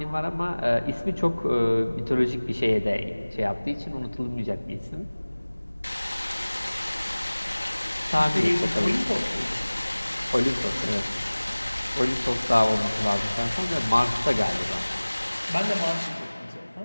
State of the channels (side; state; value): both; inverted; correlation -1.00